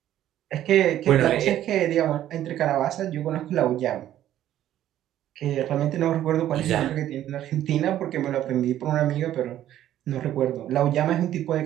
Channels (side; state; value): left; quieter; 12.2 dB